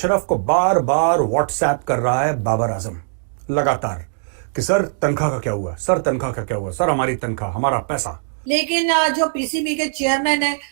को बार बार व्हाट्सएप कर रहा है बाबर आजम लगातार कि सर तनख्वाह का क्या हुआ, सर तनख्वाह का क्या हुआ, सर हमारी तनख्वाह, हमारा पैसा। लेकिन जो पीसीबी के चेयरमैन है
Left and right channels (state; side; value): silent; left; digital silence